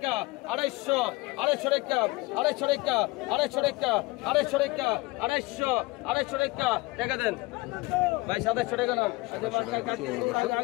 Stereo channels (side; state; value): right; quieter; 22.6 dB